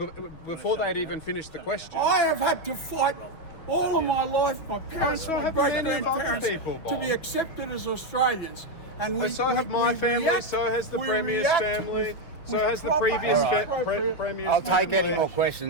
before they'd even finished the question. I have had to fight all of my life, my parents, So my have great many other grandparents, people, Bob. to be accepted as Australians. And we, So have my family, react, so has the we Premier's react family, so with has the proper previous and appropriate- Premier's I'll take family. any more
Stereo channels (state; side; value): late; right; 6.2 ms